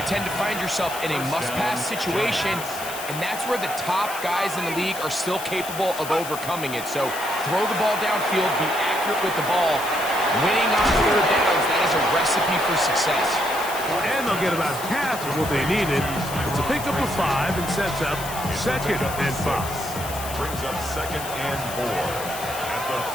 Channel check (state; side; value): noise; left; hiss, 10 dB below the sound